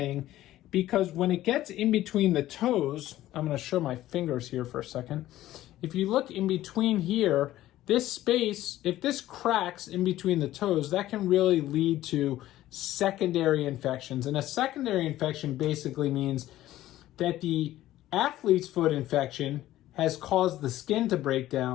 because when it gets in between the toes, I'm going to show my fingers here for a second. If you look in between here, this space, if this cracks in between the toes, that can really lead to secondary infections. And a secondary infection basically means that the athlete's foot infection has caused the skin to break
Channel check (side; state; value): right; quieter; 14.5 dB